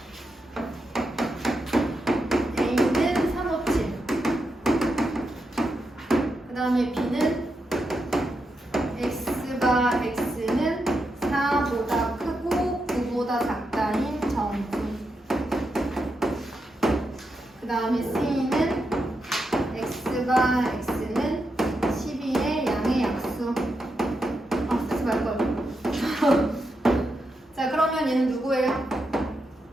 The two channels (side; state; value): both; normal; correlation 0.85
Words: A는 357. 그 다음에 B는 X가 X는 4보다 크고 9보다 작다인 정수. 그 다음에 C는 X가 X는 12의 양의 약수. 쓰지 말걸. 자, 그러면 얘는 누구예요?